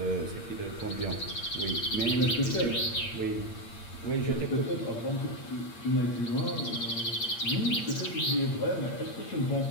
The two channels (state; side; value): late; right; 8.7 ms